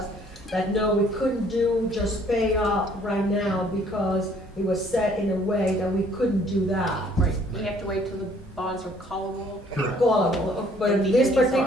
that no, we couldn't just pay off right now because it was set in a way that we couldn't do that. right, we have to wait till the bonds are callable. Callable, but in this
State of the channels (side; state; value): both; normal; correlation 0.60